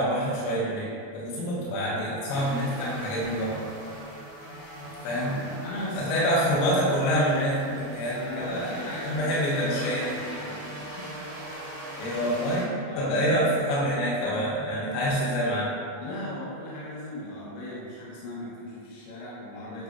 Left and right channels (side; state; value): right; late; 29 ms